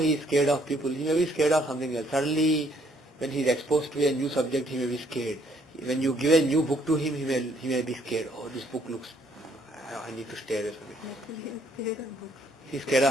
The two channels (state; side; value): normal; both; correlation 0.66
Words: is scared of people. He may be scared of something else. Suddenly, when he is exposed to a new subject, he may be scared. When you give a new book to him, he may be scared. Oh, this book looks, I need to stay away from it. He's scared